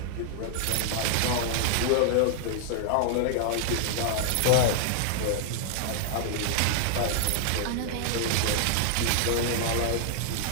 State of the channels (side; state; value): both; different; correlation -0.01